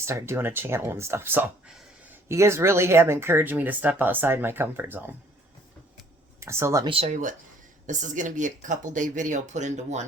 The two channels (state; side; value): normal; both; correlation 0.58